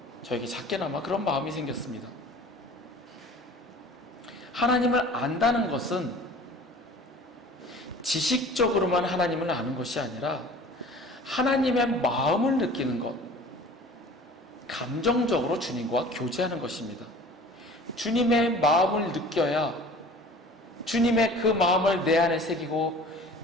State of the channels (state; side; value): normal; both; correlation 0.44